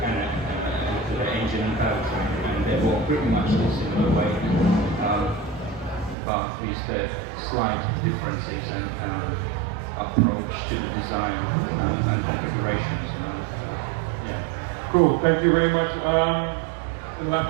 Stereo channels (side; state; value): left; drops out; at 6.2 s